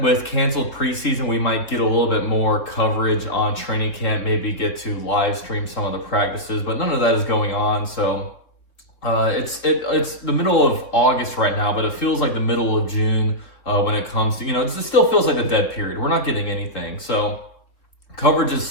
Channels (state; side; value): late; right; 3.6 ms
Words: with canceled preseason, we might get a little bit more coverage on training camp, maybe get to live stream some of the practices, but none of that is going on. So it's the middle of August right now, but it feels like the middle of June when it comes to, it still feels like a dead period. We're not getting anything. So coverage is